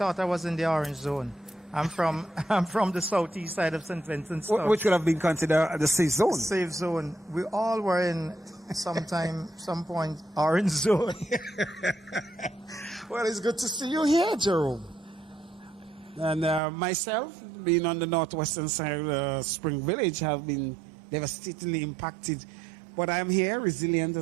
I was in the orange zone. I'm from the southeast side of St. Vincent. Which could have been considered the safe zone. Safe zone. We all were in some point, orange zone. Well, it's good to see you here, Jerome. And myself, being on the northwestern side of Spring Village, have been devastatingly impacted. But I'm here, resilient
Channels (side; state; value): left; drops out; at 16.6 s